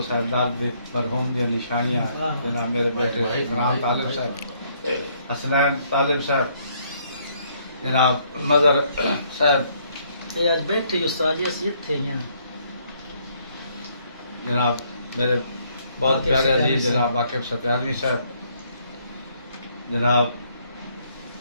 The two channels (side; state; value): both; inverted; correlation -0.68